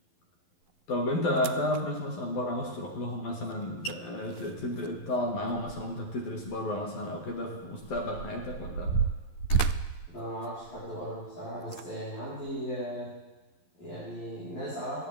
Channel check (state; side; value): late; right; 11 ms